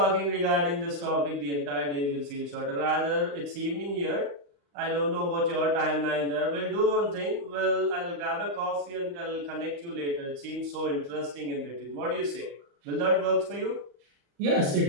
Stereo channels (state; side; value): late; left; 35 ms